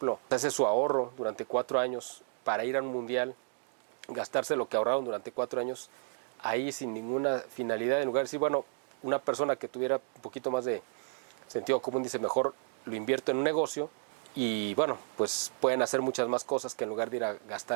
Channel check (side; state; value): left; silent; digital silence